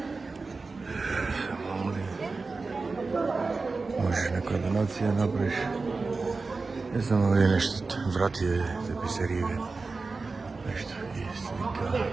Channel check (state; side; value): quieter; left; 4.0 dB